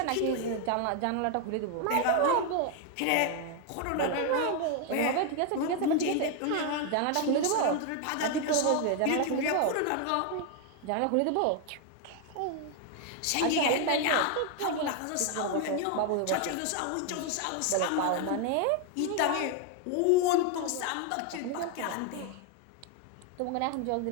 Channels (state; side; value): different; both; correlation 0.01